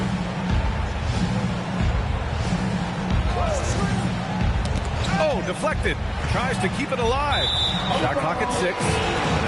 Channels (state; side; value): identical; both; correlation 1.00